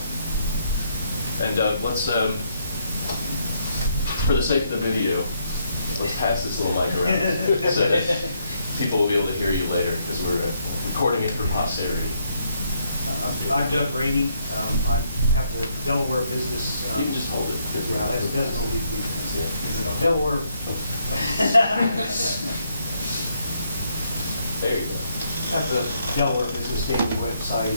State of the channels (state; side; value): inverted; both; correlation -0.74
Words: And let's, for the sake of the video, let's pass this little mic around so that people will be able to hear you later, because we're recording it for posterity. I'm Doug Rainey. I have the Delaware business. You can just hold it. Yeah, that doesn't leave me. Yeah. Delaware. There you go. I have the Delaware Business Daily website,